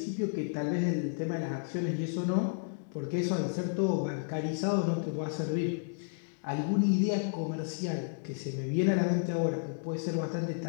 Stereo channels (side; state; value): right; silent; digital silence